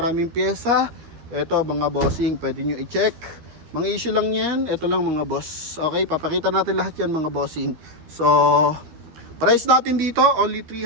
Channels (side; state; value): left; late; 13 ms